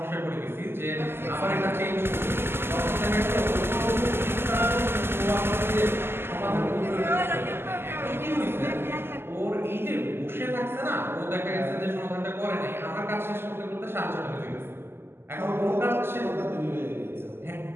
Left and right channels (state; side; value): late; left; 0.11 ms